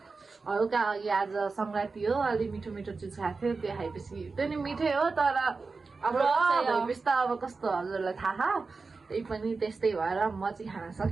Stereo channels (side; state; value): left; quieter; 4.2 dB